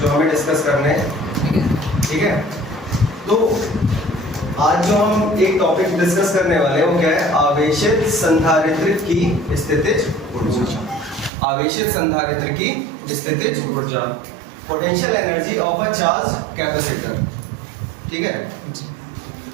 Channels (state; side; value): drops out; left; at 11.3 s